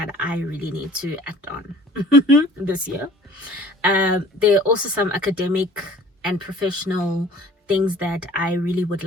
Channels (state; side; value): normal; both; correlation 0.50